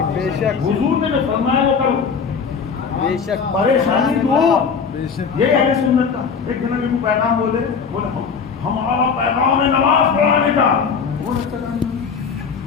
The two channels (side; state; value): right; quieter; 5.9 dB